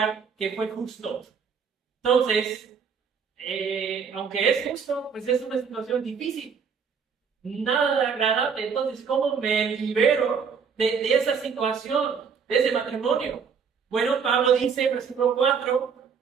que fue justo. Entonces, aunque es justo, pues es una situación difícil, nada agradable. Entonces, ¿cómo me libero de esa situación, de ese matrimonio? Bueno, Pablo dice, versículo 4,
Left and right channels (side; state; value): left; quieter; 6.3 dB